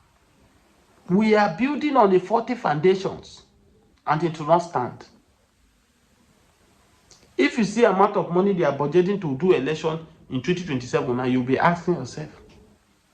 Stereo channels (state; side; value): identical; both; correlation 1.00